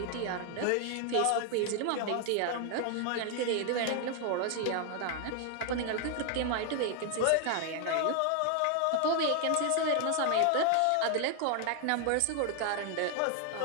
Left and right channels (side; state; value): both; different; correlation 0.00